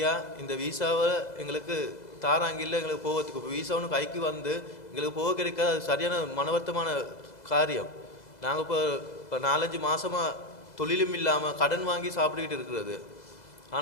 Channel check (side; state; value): right; late; 2.0 ms